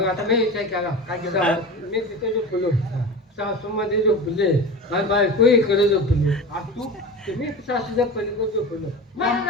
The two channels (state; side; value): normal; both; correlation 0.30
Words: आता मी विचार केला काय केलं मी तिथे झोपलो सासू मध्ये झोपले आणि बायको इकडे झोपली आणि तू तुम्ही सासूच्या पलीकडे झोपलो